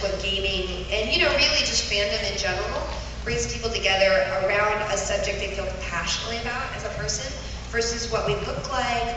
what gaming and, really just fandom in general brings people together around a subject they feel passionately about as a person, versus what we look like,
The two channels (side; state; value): both; identical; correlation 1.00